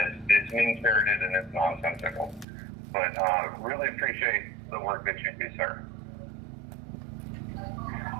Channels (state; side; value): drops out; left; at 2.5 s